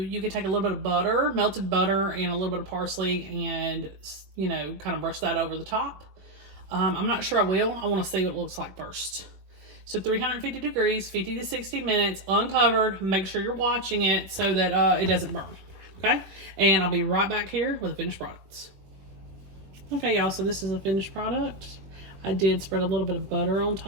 can take a little bit of butter, melted butter, and a little bit of parsley, and you know, kind of brush that over the top. I'm not sure I will. I want to see what it looks like first. So 350 degrees, 50 to 60 minutes, uncovered. Make sure you're watching it so that it doesn't burn. Okay, and I'll be right back here with the finished products. Okay, y'all, so this is a finished product. I did spread a little bit of butter on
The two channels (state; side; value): late; left; 21 ms